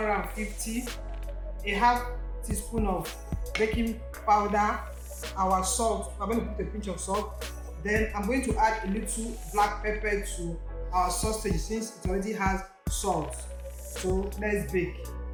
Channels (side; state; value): both; identical; correlation 1.00